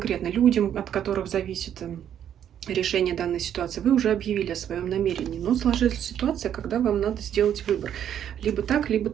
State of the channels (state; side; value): quieter; left; 9.8 dB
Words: людям, от которых зависит решение данной ситуации, вы уже объявили о своем намерении. Но сложилась ситуация, когда вам надо сделать выбор. Либо так, либо